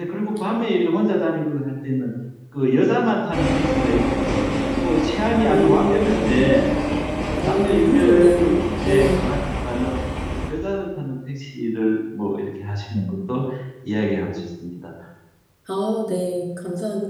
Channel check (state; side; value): identical; both; correlation 1.00